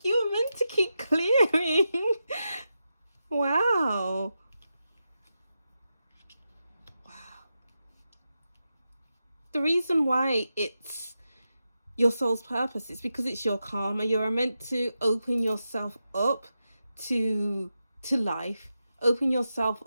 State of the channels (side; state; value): both; inverted; correlation -0.89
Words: you were meant to keep clearing. Wow. The reason why it's your soul's purpose is because it's your karma. You're meant to open yourself up to life. Open yourself